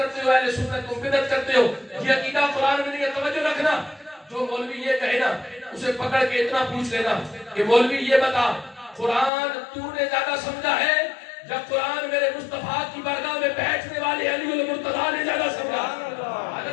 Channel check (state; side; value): drops out; right; at 9.3 s